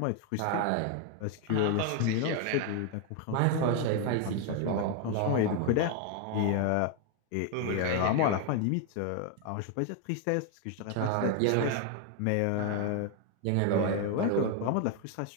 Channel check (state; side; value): different; both; correlation 0.01